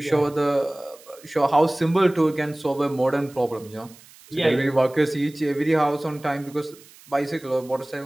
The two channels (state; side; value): noise; right; hiss, 24 dB below the sound